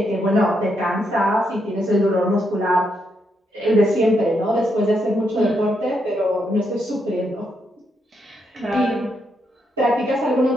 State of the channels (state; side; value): normal; both; correlation 0.79